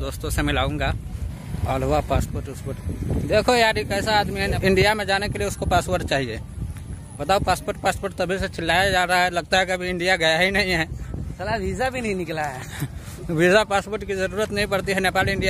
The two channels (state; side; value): identical; both; correlation 1.00